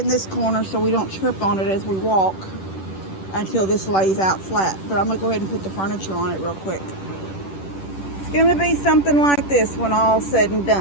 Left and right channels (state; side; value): late; right; 10 ms